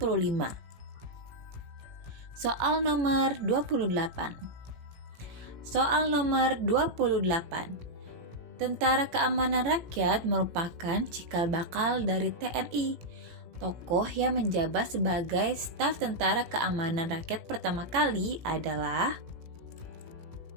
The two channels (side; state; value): left; late; 18 ms